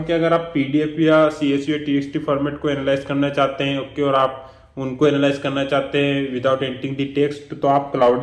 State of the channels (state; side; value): identical; both; correlation 1.00